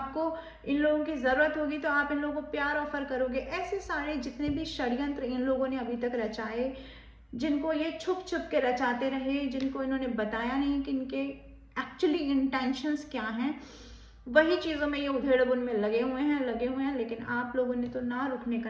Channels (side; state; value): both; identical; correlation 1.00